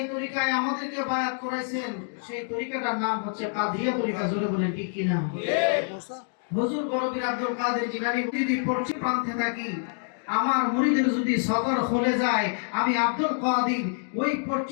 তরিকায় আমাদেরকে বায়াত করাইছেন সেই তরিকাটার নাম হচ্ছে কাদিয়া তরিকা। জোরে বলেন ঠিক কি না? হুজুর বড়পীর আব্দুল কাদের জিলানী যদি পশ্চিম প্রান্তে থাকি, আমার মুরিদের যদি সদর খুলে যায়, আমি আব্দুল কাদের ওই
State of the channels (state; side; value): silent; right; 60 dB below the other